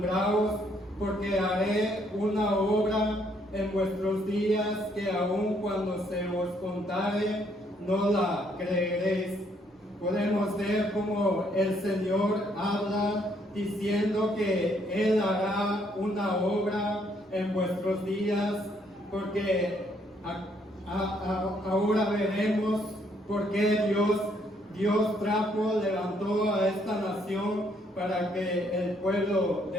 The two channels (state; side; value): normal; both; correlation 0.69